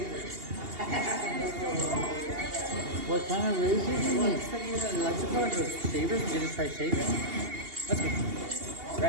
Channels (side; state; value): left; late; 2.8 ms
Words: What kind of razor do you Well, need? it's like you're electrical or shavers. You just try shaving. Let's go.